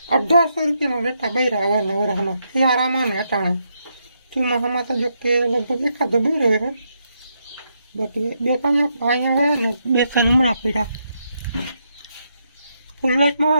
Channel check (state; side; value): inverted; both; correlation -0.80